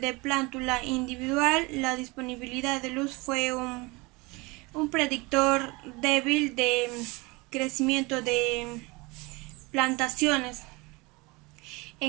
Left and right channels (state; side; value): quieter; left; 25.2 dB